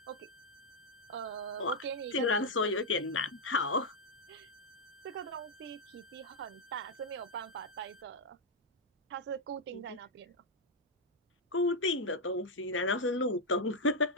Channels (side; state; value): both; normal; correlation -0.01